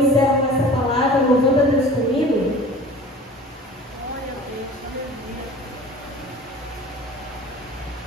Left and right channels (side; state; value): both; normal; correlation 0.42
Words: com essa palavra, louvando a Deus comigo.